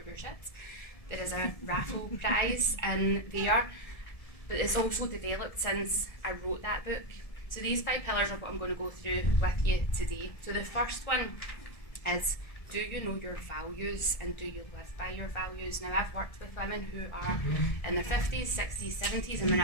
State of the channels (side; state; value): right; late; 1.7 ms